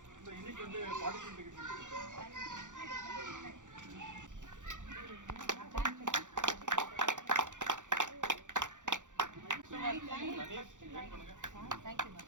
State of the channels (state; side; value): late; left; 0.86 ms